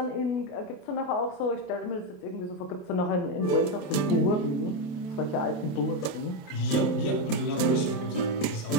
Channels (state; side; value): late; right; 27 ms